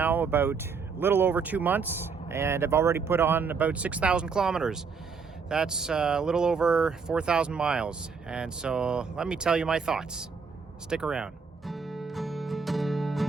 about a little over 2 months, and I've already put on about 6,000 kilometers. That's a little over 4,000 miles, and so let me tell you my thoughts. Stick around.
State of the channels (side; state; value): left; quieter; 5.4 dB